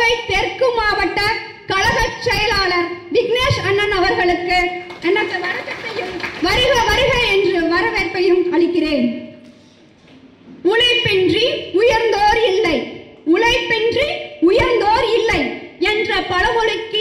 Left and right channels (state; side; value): identical; both; correlation 1.00